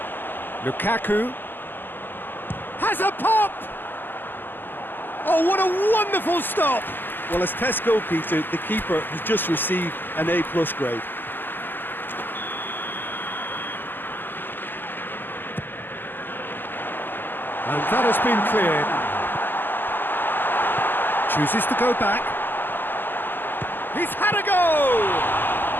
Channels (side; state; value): right; late; 0.096 ms